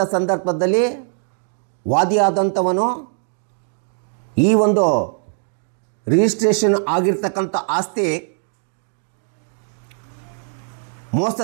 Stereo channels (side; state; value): left; silent; 61 dB below the other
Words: ಸಂದರ್ಭದಲ್ಲಿ ವಾದಿಯಾದಂಥವನು ಈ ಒಂದು ರಿಜಿಸ್ಟ್ರೇಷನ್ ಆಗಿರ್ತಕ್ಕಂಥ ಆಸ್ತಿ